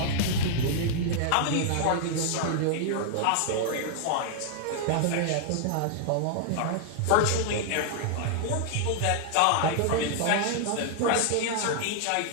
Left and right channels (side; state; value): both; different; correlation 0.00